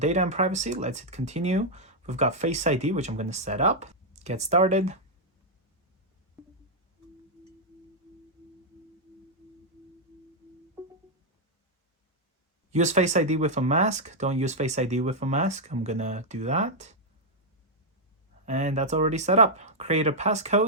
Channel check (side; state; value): both; normal; correlation -0.03